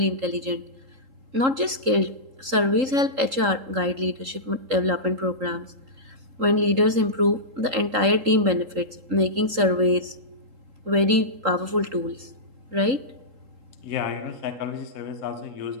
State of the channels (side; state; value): left; late; 3.8 ms